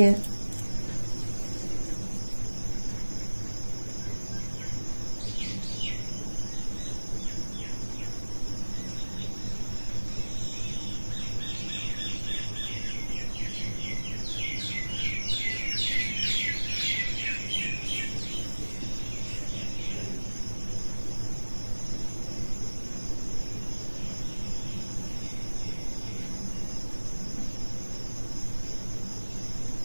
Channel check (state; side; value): inverted; both; correlation -1.00